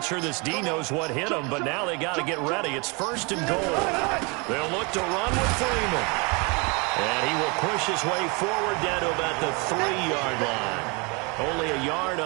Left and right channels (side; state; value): left; quieter; 30.0 dB